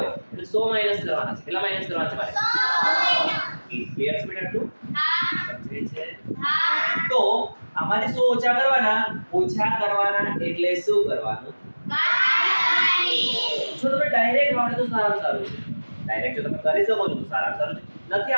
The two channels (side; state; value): both; inverted; correlation -1.00